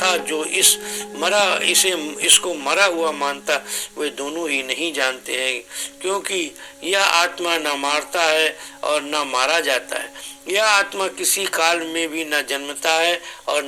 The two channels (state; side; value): identical; both; correlation 1.00